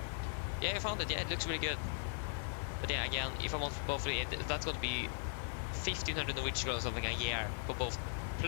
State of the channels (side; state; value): right; silent; 52 dB below the other